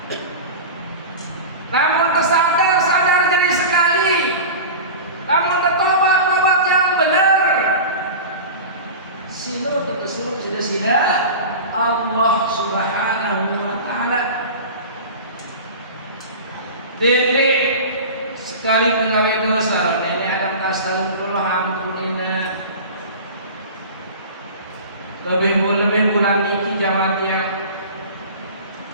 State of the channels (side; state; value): both; inverted; correlation -0.32